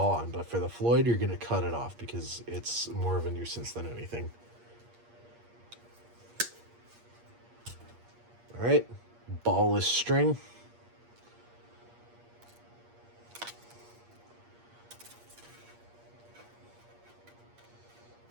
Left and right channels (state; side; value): late; left; 8.5 ms